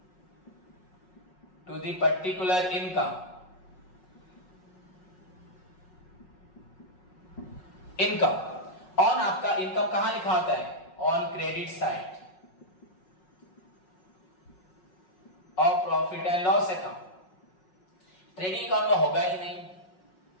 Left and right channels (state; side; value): late; right; 5.4 ms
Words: to the particular income. Income on, आपका इनकम कहां लिखा होता है, ऑन क्रेडिट साइड और profit and loss account. Trading account में होगा ही नहीं।